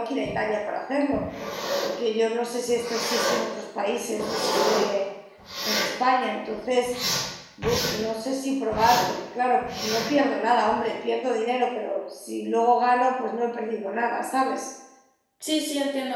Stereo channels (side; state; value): both; identical; correlation 1.00